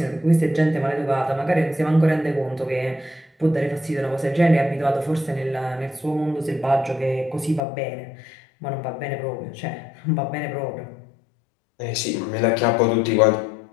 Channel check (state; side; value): drops out; right; at 7.6 s